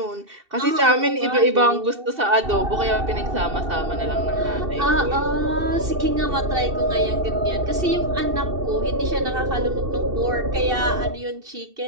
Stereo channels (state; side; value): late; left; 2.7 ms